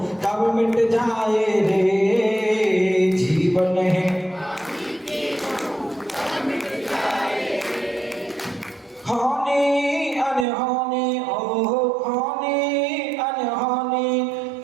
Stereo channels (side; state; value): left; drops out; at 10.5 s